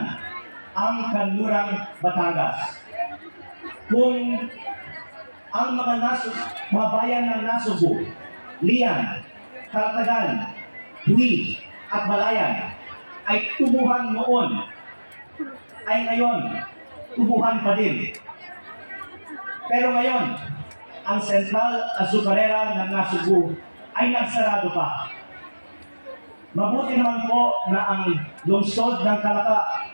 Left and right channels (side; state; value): both; inverted; correlation -1.00